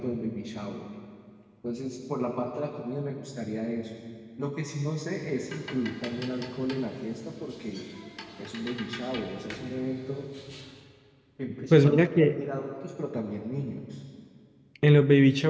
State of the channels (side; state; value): both; identical; correlation 1.00